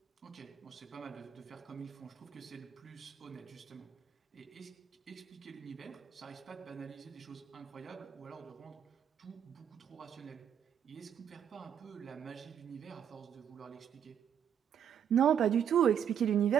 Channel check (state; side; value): quieter; left; 8.7 dB